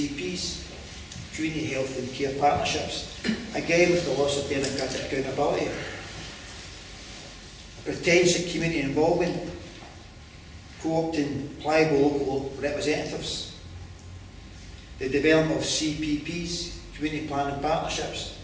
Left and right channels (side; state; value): both; identical; correlation 1.00